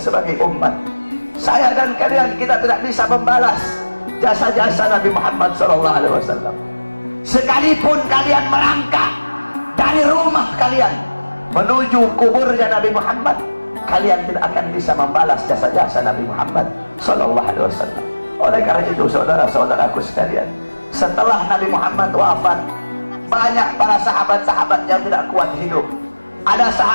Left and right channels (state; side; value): inverted; both; correlation -1.00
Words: sebagai umat. Saya dan kalian, kita tidak bisa membalas jasa-jasa Nabi Muhammad SAW. Sekalipun kalian merangkak dari rumah kalian menuju kuburnya Nabi Muhammad, kalian tidak akan bisa membalas jasa-jasa Nabi Muhammad SAW. Oleh karena itu, saudara-saudaraku sekalian, setelah Nabi Muhammad wafat, banyak para sahabat-sahabat yang tidak kuat hidup. Ada